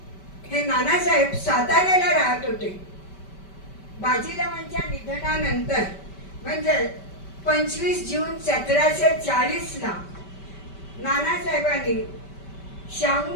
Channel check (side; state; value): right; late; 5.2 ms